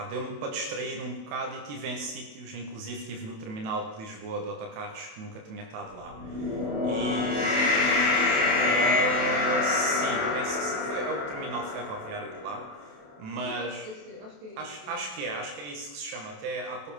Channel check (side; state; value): left; late; 27 ms